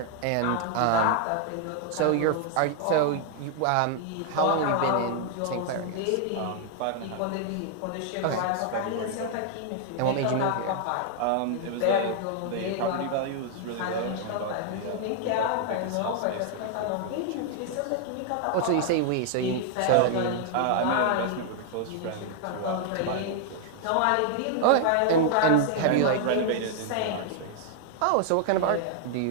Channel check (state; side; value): different; both; correlation 0.00